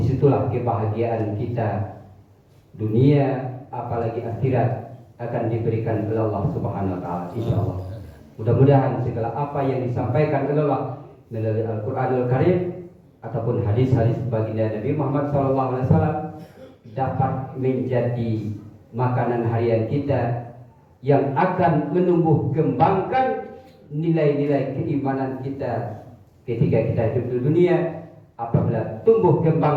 kebahagiaan kita dunia apalagi akhirat akan diberikan oleh Allah Subhanahu wa taala insyaallah. Mudah-mudahan segala apa yang disampaikan oleh Allah melalui Al-Qur'anul Karim ataupun hadis-hadis baginda Nabi Muhammad SAW dapat menjadi makanan harian kita yang akan menumbuh kembangkan nilai-nilai keimanan kita ketika kita hidup di dunia. Apabila tumbuh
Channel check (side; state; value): both; identical; correlation 1.00